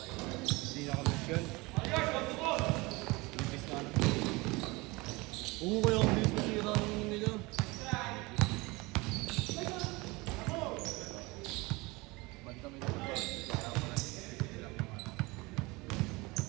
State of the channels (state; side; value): quieter; left; 24.0 dB